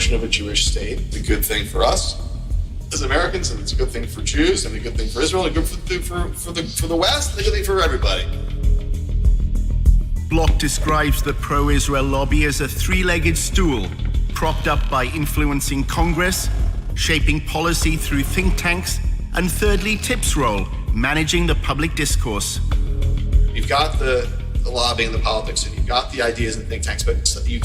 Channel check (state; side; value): identical; both; correlation 1.00